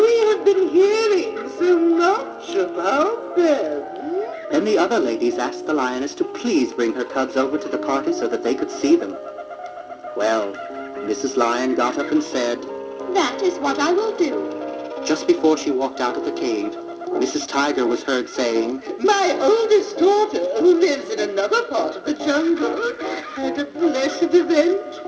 have been hearing so much about them. Then the other ladies asked the lioness to please bring her cubs over to the party so that they could see them. Well, Mrs. Lion got up and said, That is what I will do. Just before she walked out of the cave, Mrs. Tiger was heard saying, My oldest daughter, who lives in another part of the jungle, had a blessed event,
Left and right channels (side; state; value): both; identical; correlation 1.00